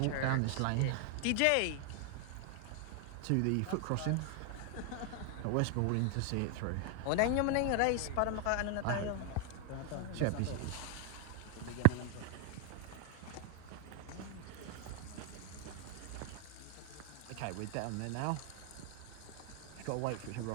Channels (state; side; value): different; both; correlation 0.01